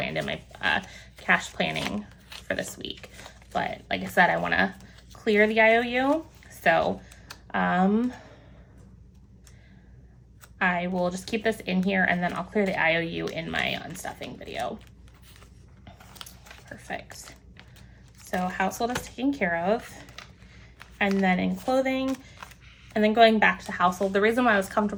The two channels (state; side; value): identical; both; correlation 1.00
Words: in my cash planning for this week. But like I said, I want to clear the IOU. So I will just keep this in here and then I'll clear the IOU in my unstuffing video. Perfect. So household is taken care of. And then in clothing, and then going back to household, the reason why I was